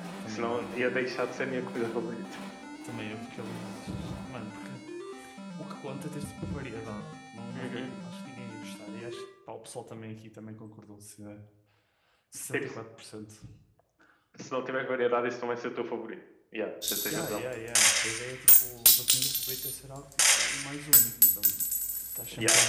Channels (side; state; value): both; identical; correlation 1.00